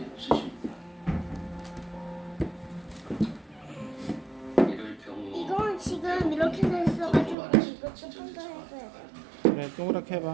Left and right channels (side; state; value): left; drops out; at 7.4 s